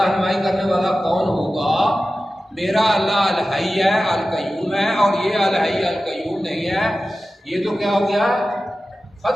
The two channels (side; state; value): both; normal; correlation 0.94